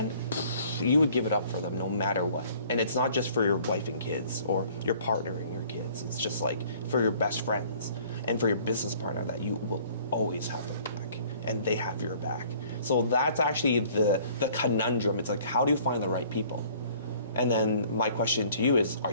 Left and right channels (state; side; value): inverted; both; correlation -0.55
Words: you would give it up for them no matter what. And it's not just for your wife and kids or your partner and your kids. It's just like for your best friends and for your business partner that you will always have their back and they have your back. So that's actually the conundrum. It's like, how do you find the right people? And then my question to you is, are